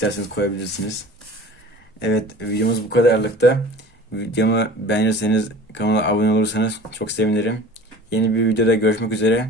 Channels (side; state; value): both; normal; correlation 0.41